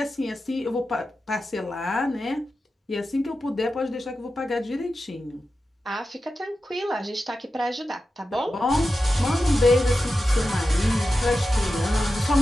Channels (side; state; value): both; normal; correlation 0.92